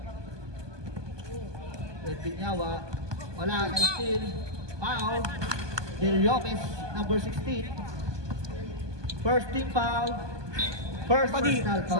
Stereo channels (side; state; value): left; late; 1.2 ms